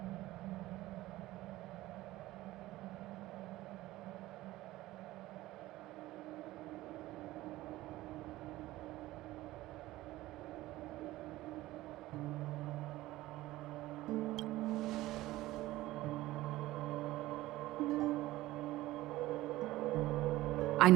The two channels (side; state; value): left; quieter; 17.0 dB